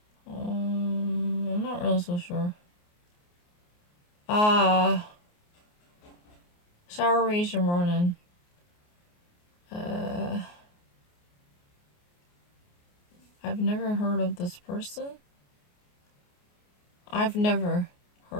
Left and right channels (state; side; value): late; right; 28 ms